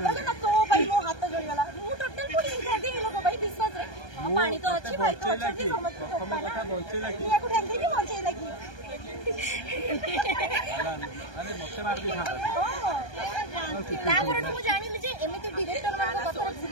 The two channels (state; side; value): late; right; 1.2 ms